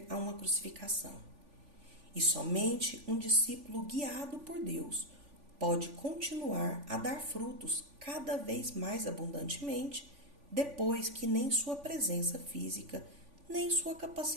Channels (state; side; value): late; left; 3.5 ms